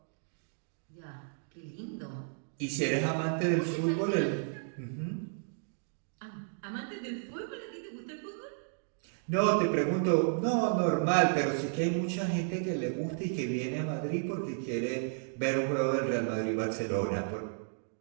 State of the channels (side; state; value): left; silent; digital silence